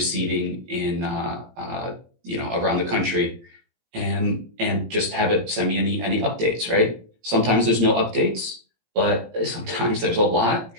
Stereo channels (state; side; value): late; left; 18 ms